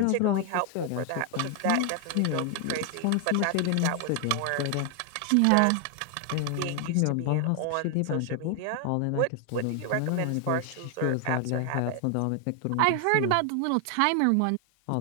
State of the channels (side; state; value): both; different; correlation 0.00